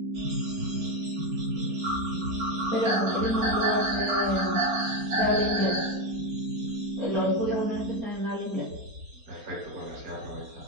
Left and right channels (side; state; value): left; late; 4.3 ms